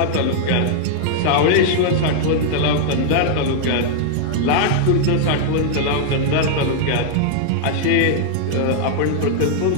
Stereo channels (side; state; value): both; different; correlation -0.01